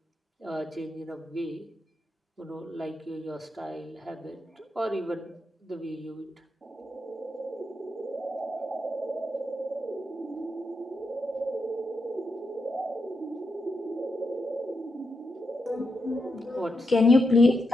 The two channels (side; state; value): both; normal; correlation 0.85